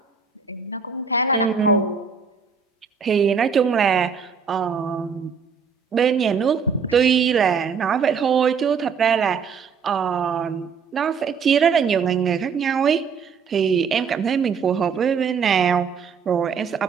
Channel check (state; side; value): quieter; left; 6.1 dB